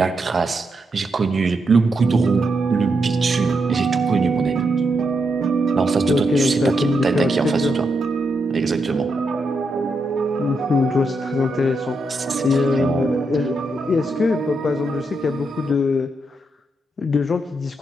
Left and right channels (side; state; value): both; normal; correlation 0.82